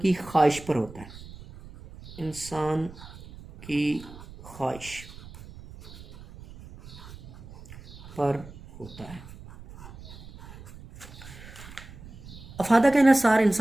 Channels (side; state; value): right; noise; rumble, 17 dB below the sound